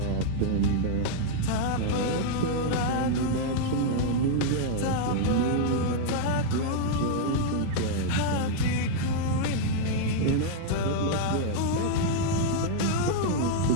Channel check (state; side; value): different; both; correlation -0.01